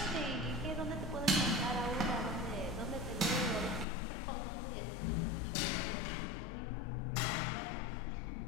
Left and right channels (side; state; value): right; drops out; at 3.9 s